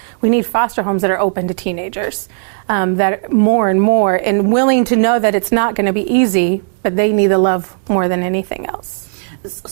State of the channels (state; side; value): silent; left; digital silence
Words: we need foster homes that are open to teenagers, that more and more, and willing to know that it's not going to be easy, but they need the love more than anything else.